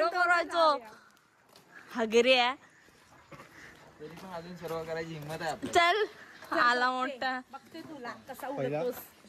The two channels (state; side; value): identical; both; correlation 1.00